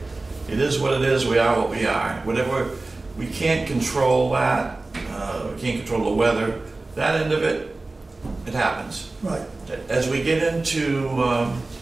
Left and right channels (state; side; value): quieter; left; 3.2 dB